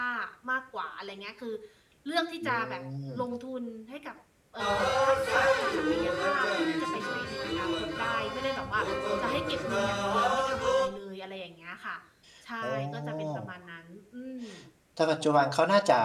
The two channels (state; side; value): identical; both; correlation 1.00